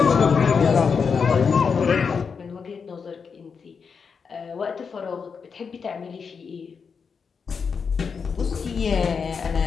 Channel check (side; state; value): right; quieter; 5.8 dB